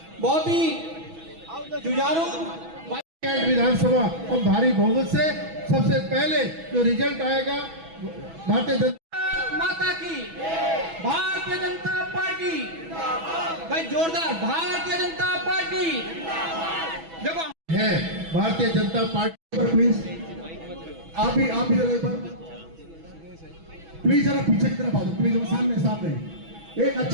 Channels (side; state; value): left; late; 6.1 ms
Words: बहुत ही जुझारू विधानसभा और भारी बहुमत से सबसे पहले जो रिजल्ट आएगा भारतीय जनता माता की, भारतीय जनता पार्टी, भाई जोरदार भारतीय जनता पार्टी देखो है। भारतीय जनता पार्टी पर प्लीज आप भी जरा एक बार प्लीज जरा पीछे की तरफ आओ, प्लीज सामने एक